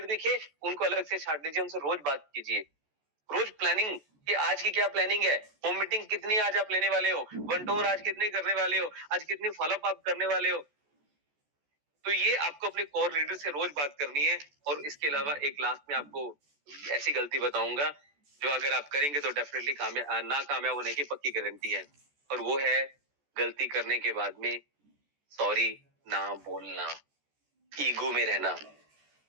दिखे उनको अलग से छांट लीजिए, उनसे रोज बात कीजिए। रोज प्लानिंग कि आज की क्या प्लानिंग है, होम मीटिंग कितनी आज आप लेने वाले हो, वन टू वन आज कितनी करने वाले हो, आज कितनी फॉलोअप आप करने वाले हो। तो ये आपको अपने कोर लीडर से रोज बात करनी है। और इसके अलावा एक लास्ट में आपको ऐसी गलती बताऊंगा जो अगर आप करेंगे तो डेफिनेटली ना कामयाब होने की पक्की गारंटी है। और वो है गलती करने के बाद में सॉरी ना बोलना, ईगो में रहना,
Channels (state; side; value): late; left; 14 ms